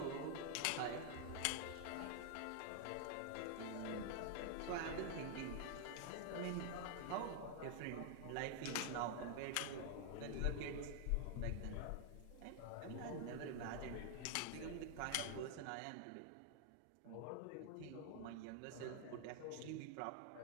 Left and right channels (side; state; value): both; different; correlation 0.00